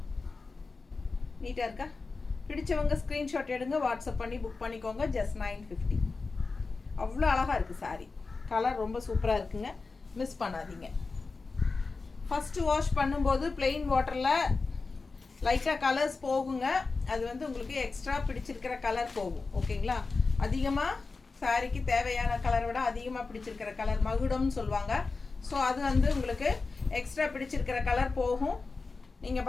நீட்டாக இருக்கா? பிடிச்சவங்க ஸ்க்ரீன்ஷாட் எடுங்க, வாட்ஸ்அப் பண்ணி புக் பண்ணிக்கோங்க. ஜஸ்ட் 950. அவ்வளோ அழகாக இருக்குது சாரீ. கலர் ரொம்ப சூப்பராக இருக்குங்க, மிஸ் பண்ணாதீங்க. ஃபஸ்ட்டு வாஷ் பண்ணும்போது பிளெயின் வாட்டரில் லைட்டாக கலர்ஸ் போகுங்க. அது வந்து உங்களுக்கு எக்ஸ்ட்ரா பிடிச்சிருக்கிற கலர் போகும். ஓகேங்களா? அதிகமாக சாரீக்கு தேவையான கலரை விட அதிகமாக பிடிச்சிருக்கிற கலர் மகுடம்னு சொல்லுவாங்க. ஸோ அது வந்து உங்களுக்கு எக்ஸ்ட்ரா பிடிச்சிருக்கிற கலர் போகும். நீங்கள்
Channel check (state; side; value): quieter; right; 4.1 dB